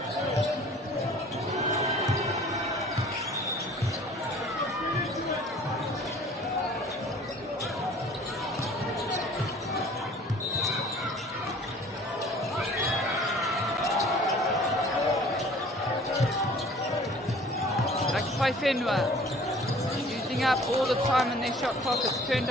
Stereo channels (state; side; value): normal; both; correlation 0.50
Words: Whenua using up all the time in their shot clock. It's turned